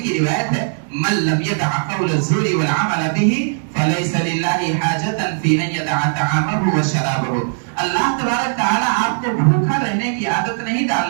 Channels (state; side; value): silent; left; digital silence